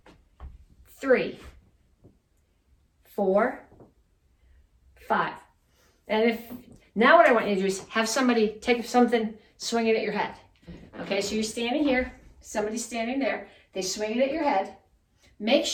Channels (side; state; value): both; identical; correlation 1.00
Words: 3, 4, 5. And now what I want you to do is have somebody take something, swing it at your head. Okay, so you're standing here, somebody's standing there, they swing it at your head. Make